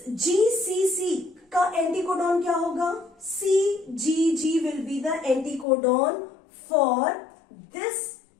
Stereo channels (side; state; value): right; drops out; at 5.7 s